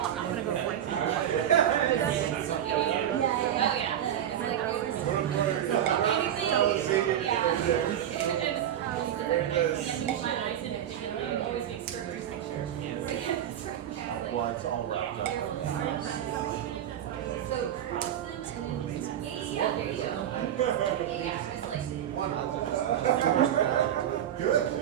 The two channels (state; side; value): quieter; left; 10.5 dB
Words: not gonna go to part 2. Well, it's all wrapped up.